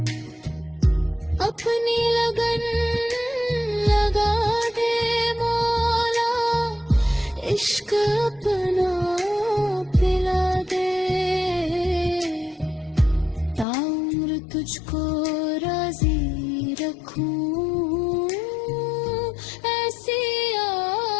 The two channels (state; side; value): drops out; right; at 13.7 s